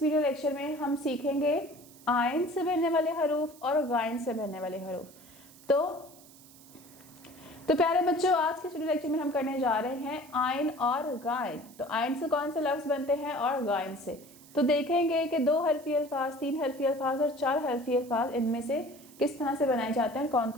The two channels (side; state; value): right; noise; hiss, 22 dB below the sound